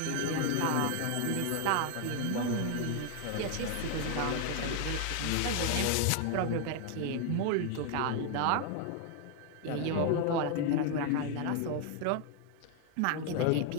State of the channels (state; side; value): different; both; correlation 0.01